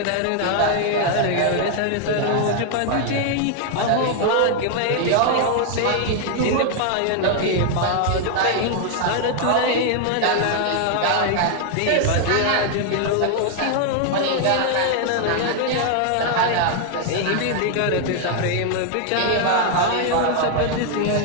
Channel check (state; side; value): different; both; correlation 0.00